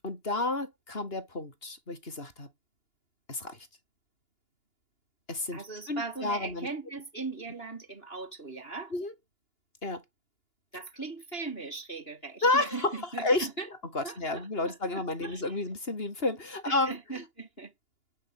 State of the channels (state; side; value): late; right; 2.9 ms